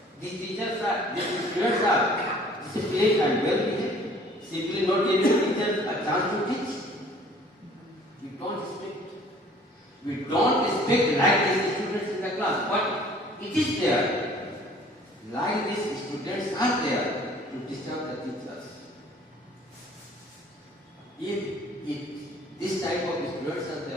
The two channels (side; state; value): both; normal; correlation 0.53